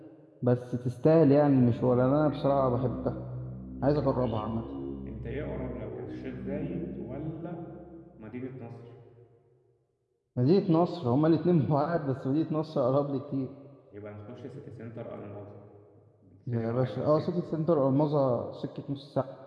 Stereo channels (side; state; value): both; identical; correlation 1.00